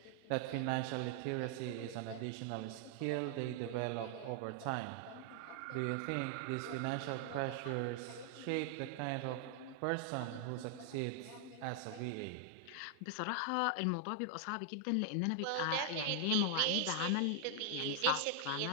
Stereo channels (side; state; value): both; different; correlation 0.00